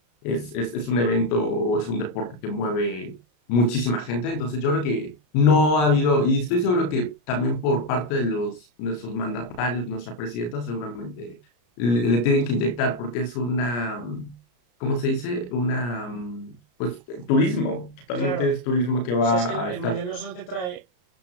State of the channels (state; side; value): late; right; 33 ms